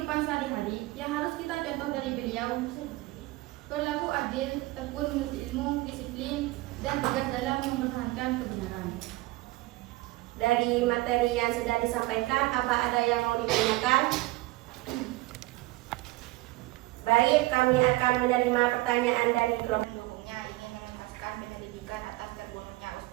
adil, tekun menuntut ilmu, disiplin, dan tegas dalam mempertahankan kebenaran. Dari materi yang sudah disampaikan, apa ada yang mau ditanyakan? Baik, kami akan menerima pertanyaan dari kelompok. Pendukungnya ingin menuntaskan penyelidikan atas terbunuhnya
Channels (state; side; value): quieter; left; 19.7 dB